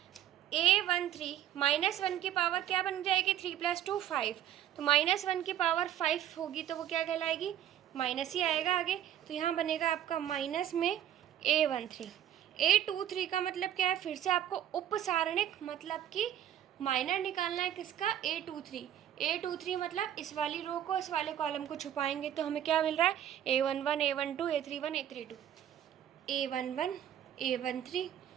A13 -1 की पावर क्या बन जाएगी, 3 + 2 5। तो -1 की पावर 5 होगी, तो वो क्या कहलाएगी, माइनस ही आएगा आगे। तो यहाँ बनेगा आपका माइनस में A13। A23 का मतलब क्या है, फिर से आपको उपसारणिक मतलब कि माइनर निकालना है किसका, A23 मतलब इस वाली रो को इस वाले कॉलम को छुपाएंगे। तो हमें क्या मिल रहा है, A11 A12 A31 A32, A11 A13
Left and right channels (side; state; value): left; quieter; 11.0 dB